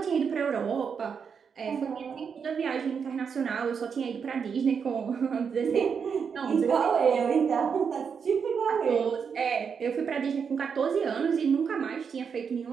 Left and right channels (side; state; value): left; quieter; 6.4 dB